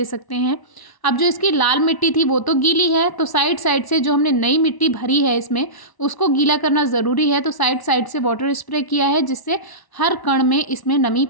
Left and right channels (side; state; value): right; late; 1.0 ms